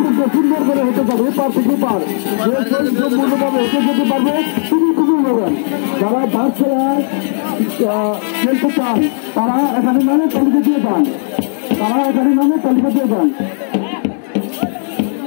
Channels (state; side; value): silent; right; digital silence